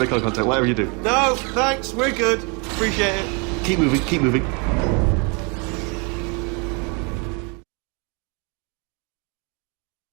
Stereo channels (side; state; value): left; quieter; 33.4 dB